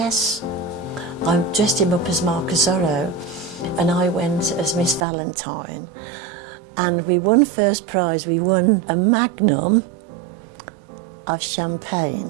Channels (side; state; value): left; drops out; at 5.1 s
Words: I dressed him up as Marcus Zorro, and I went as Miss Valentine, and we won first prize. We won a magnum of